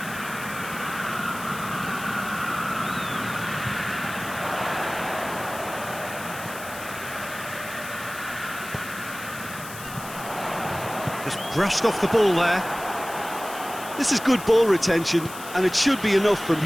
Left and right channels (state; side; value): noise; left; hiss, 13 dB below the sound